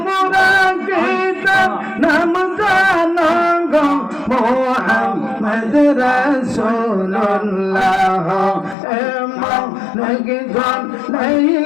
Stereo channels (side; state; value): right; drops out; at 8.8 s